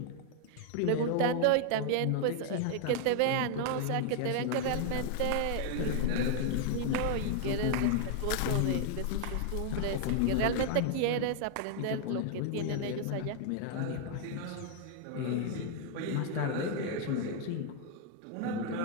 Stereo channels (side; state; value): both; different; correlation 0.00